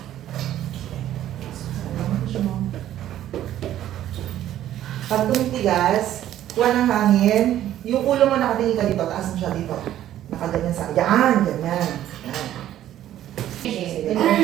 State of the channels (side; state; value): left; quieter; 12.3 dB